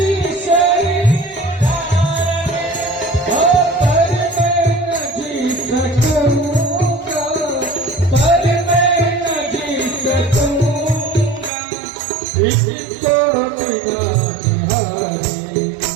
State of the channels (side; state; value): left; drops out; at 11.5 s